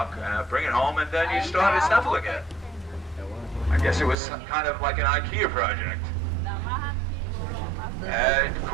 bring it home, and then you start assembling it. I guess it was kind of like an IKEA project. It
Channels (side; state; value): left; drops out; at 4.2 s